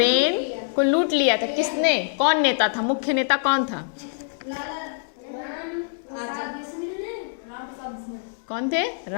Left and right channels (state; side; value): silent; right; digital silence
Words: को लूट लिया था किसने? कौन नेता था? मुख्य नेता कौन था? कौन थे?